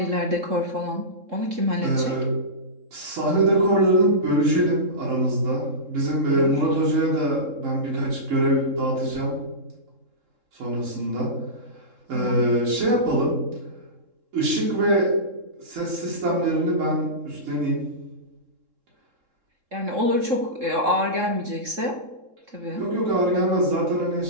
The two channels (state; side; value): late; left; 3.7 ms